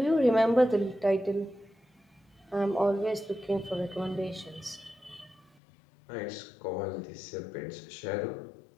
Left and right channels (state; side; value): drops out; right; at 5.5 s